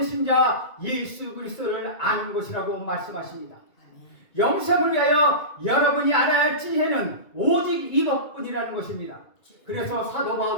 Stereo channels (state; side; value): late; right; 2.2 ms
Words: 자 예수 그리스도를 아는 것이라고 말씀하십니다. 영생을 위하여 여러분이 알아야 할 지혜는 오직 이것뿐이라는 것입니다. 그래서 사도